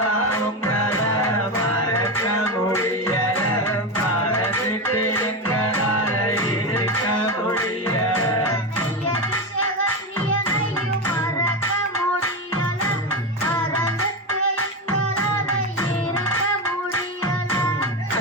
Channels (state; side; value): normal; both; correlation 0.16